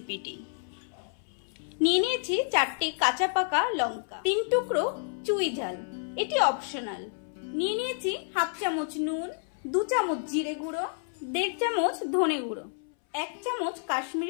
নিয়ে নিয়েছি 4টে কাঁচা পাকা লঙ্কা, 3 টুকরো চুই ঝাল, এটি অপশনাল। নিয়ে নিয়েছি 1/2 চামচ নুন, 2 চামচ জিরে গুঁড়ো, 1.5 চামচ ধনে গুঁড়ো, 1 চামচ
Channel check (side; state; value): right; silent; 58 dB below the other